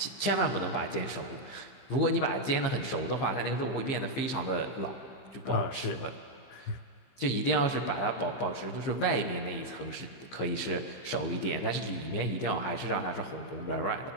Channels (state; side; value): late; right; 15 ms